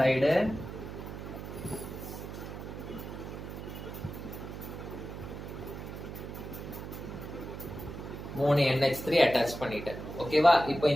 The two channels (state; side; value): noise; right; hum, 9 dB below the sound